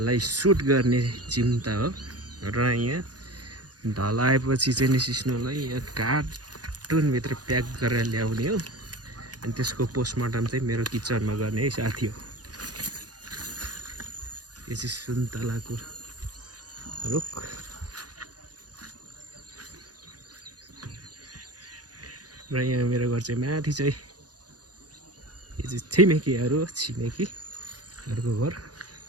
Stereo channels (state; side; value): late; left; 0.69 ms